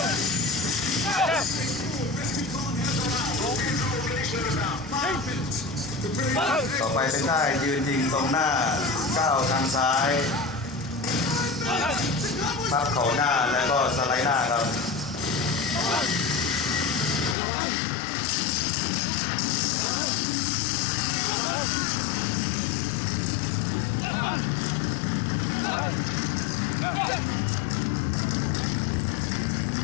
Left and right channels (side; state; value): right; drops out; at 17.4 s